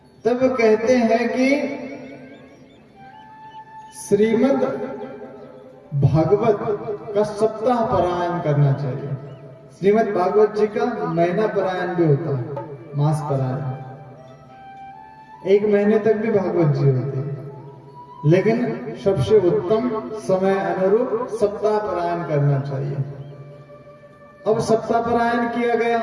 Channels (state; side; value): identical; both; correlation 1.00